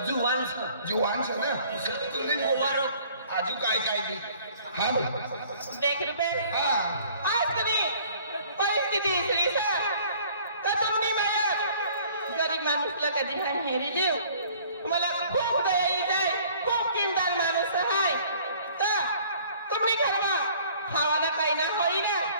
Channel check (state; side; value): inverted; both; correlation -0.55